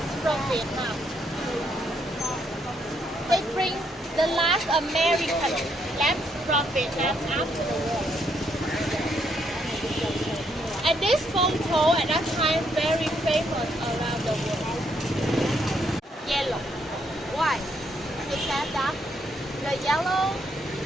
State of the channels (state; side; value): normal; both; correlation 0.74